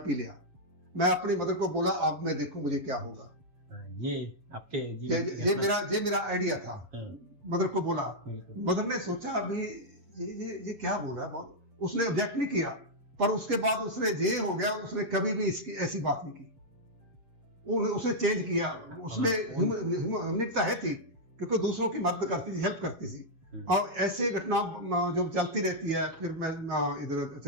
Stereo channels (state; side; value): late; left; 7.3 ms